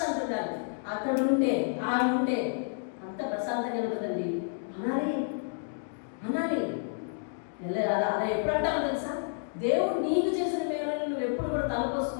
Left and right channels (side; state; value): right; silent; digital silence